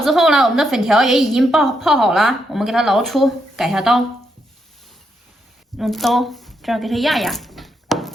之后呢，我们的粉条也已经泡好了，我们给它捞出，改下刀，用刀这样给它压压，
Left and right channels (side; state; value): both; normal; correlation 0.80